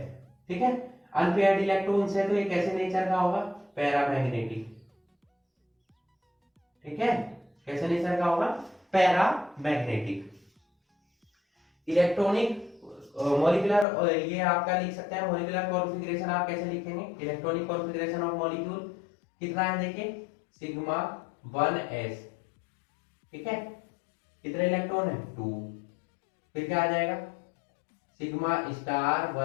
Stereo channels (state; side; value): drops out; right; at 13.9 s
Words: ठीक है। अनपेयर्ड इलेक्ट्रॉन्स है तो ये कैसे नेचर का होगा, पैरामैग्नेटिक, ठीक है। कैसे नेचर का होगा, पैरामैग्नेटिक। इलेक्ट्रॉनिक मॉलिक्यूलर, ये आपका लिख सकते हैं मॉलिक्यूलर कॉन्फ़िगरेशन, आप कैसे लिखेंगे इलेक्ट्रॉनिक कॉन्फ़िगरेशन ऑफ मॉलिक्यूल कितना है, देखिए सिग्मा 1s, ठीक है। कितने इलेक्ट्रॉन है 2, फिर क्या आ जाएगा सिग्मा स्टार